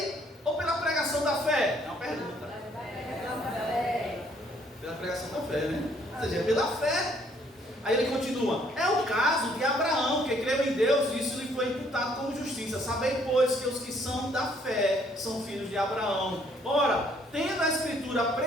ou pela pregação da fé? É uma pergunta. Pela pregação da fé, né? Ou seja, é pela fé. Aí ele continua: é o caso de Abraão, que creu em Deus, e isso lhe foi imputado como justiça. Sabei, pois, que os que são da fé são filhos de Abraão. Ora, tendo a Escritura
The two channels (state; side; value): normal; both; correlation 0.65